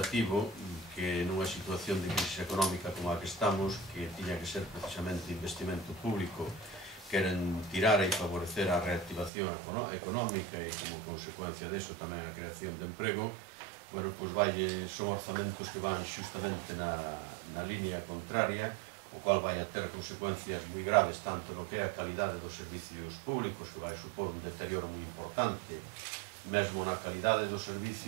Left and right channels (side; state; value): left; drops out; at 9.3 s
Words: que nunha situación de crisis económica como a que estamos, que tiña que ser precisamente investimento público, queren tirar e favorecer a reactivación económica e como consecuencia deso tamén a creación de emprego, bueno, pois son orzamentos que van xustamente na línea contraria, o cual vai a ter consecuencias moi graves tanto no que é a calidade dos servicios públicos, que vai supor un deterioro moi importante, mesmo na calidade do